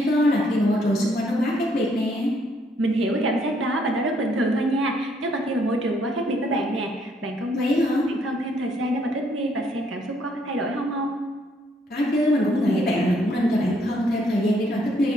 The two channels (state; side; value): normal; both; correlation 0.69